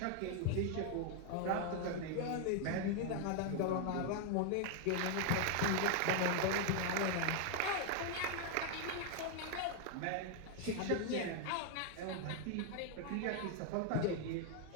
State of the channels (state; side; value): different; both; correlation 0.00